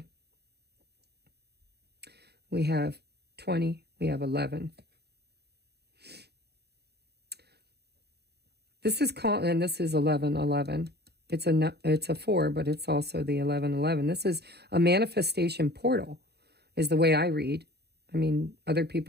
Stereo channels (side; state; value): left; late; 0.48 ms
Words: We have 20. We have 11. This is called, and this is 1111. It's a 4, but it's also the 1111. This is a manifestation portal, is the way I read. I mean, other